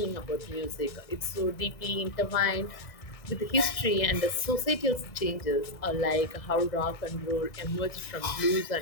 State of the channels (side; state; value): right; late; 1.6 ms